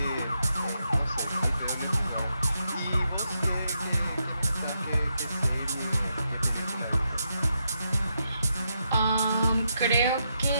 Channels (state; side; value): inverted; both; correlation -0.81